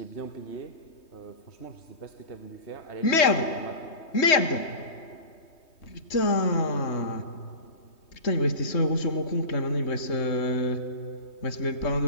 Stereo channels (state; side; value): late; right; 3.2 ms